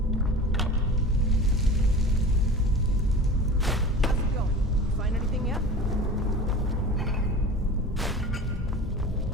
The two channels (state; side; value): normal; both; correlation 0.36